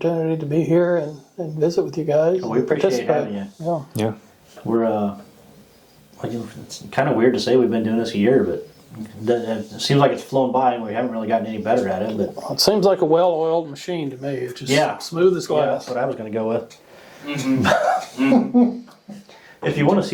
to be here and visit with you guys. We appreciate having you. Yeah. Yeah. We're, it's kind of weird to say we've been doing this a year, but it seems like it's flown by and we haven't really gotten any better at it. But It seems like a well-oiled machine to me. It's just smooth as yeah, glass. that's what I was going to go with. If you want to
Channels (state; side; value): identical; both; correlation 1.00